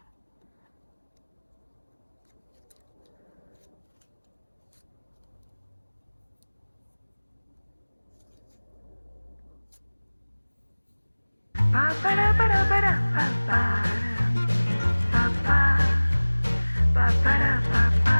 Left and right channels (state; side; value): inverted; both; correlation -1.00